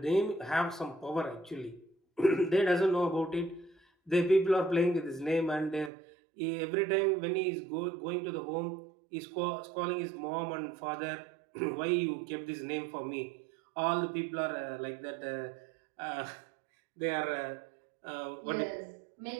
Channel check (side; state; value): left; drops out; at 5.9 s